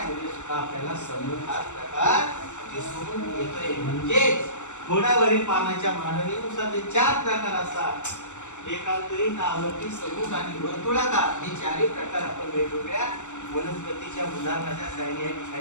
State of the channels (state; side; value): late; right; 0.84 ms